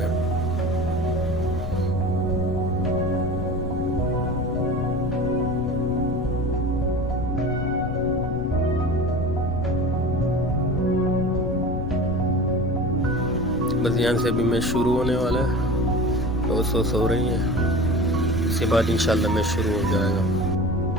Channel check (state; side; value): noise; left; rumble, 5 dB below the sound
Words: बस यहाँ से अभी मैच शुरू होने वाला है, तो सो रही हैं, इसके बाद इंशाल्लाह मैच शुरू हो जाएगा।